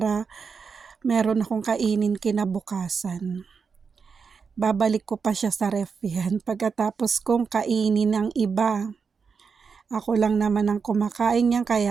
meron akong kainin kinabukasan. Babalik ko pa siya sa ref yan pagkatapos kong kainin ng iba. Ako lang naman ang kumakain yan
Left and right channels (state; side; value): quieter; left; 5.6 dB